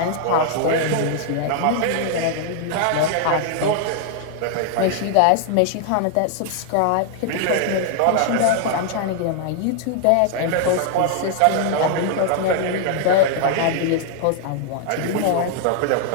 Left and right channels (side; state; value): both; different; correlation 0.00